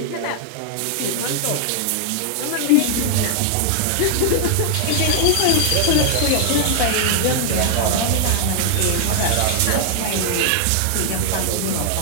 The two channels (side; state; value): both; different; correlation 0.00